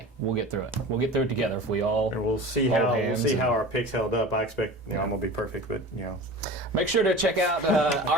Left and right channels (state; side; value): normal; both; correlation 0.35